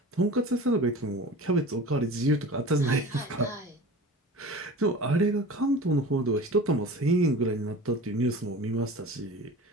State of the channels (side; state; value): both; normal; correlation 0.37